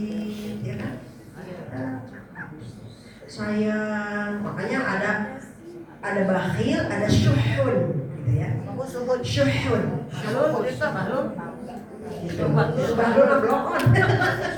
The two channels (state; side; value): identical; both; correlation 1.00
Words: ya kan? Sayang, makanya ada bakhil, ada syuhun, gitu ya. Syuhun. Bahlul blokon.